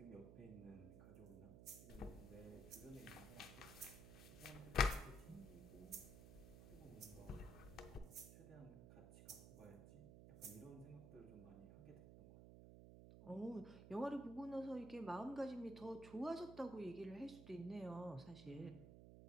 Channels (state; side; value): noise; right; hum, 11 dB below the sound